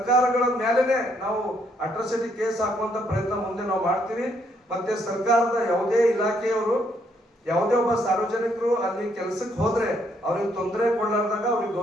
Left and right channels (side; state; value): both; normal; correlation 0.72